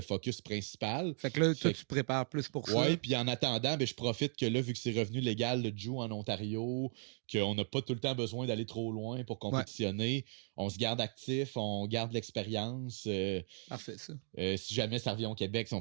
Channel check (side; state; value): left; silent; 53 dB below the other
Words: principal. Fait que là, toi, tu te prépares plus pour ça. Oui, puis en attendant, ben, je profite que là, vu que c'est revenu légal le Jiu en Ontario, qu'on n'a pas tout le temps besoin d'aller trop loin pour compétitionner, on se garde actif, on garde l'expérience. Parfait, ça. Si jamais ça revient au Québec, si